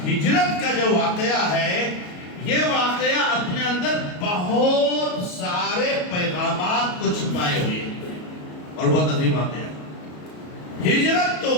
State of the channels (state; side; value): late; right; 33 ms